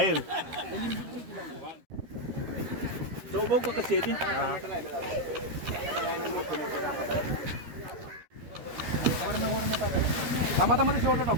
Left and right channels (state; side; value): late; left; 13 ms